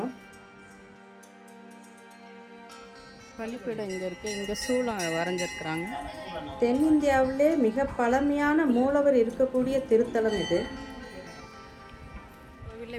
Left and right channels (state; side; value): identical; both; correlation 1.00